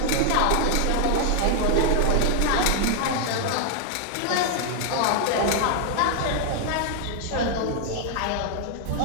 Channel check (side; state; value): both; different; correlation 0.00